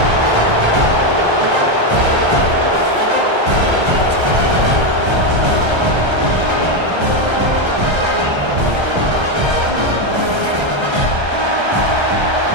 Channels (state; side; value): late; left; 1.3 ms